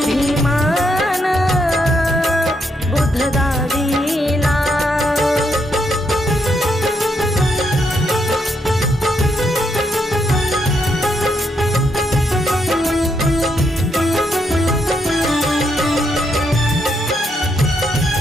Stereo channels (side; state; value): both; normal; correlation 0.78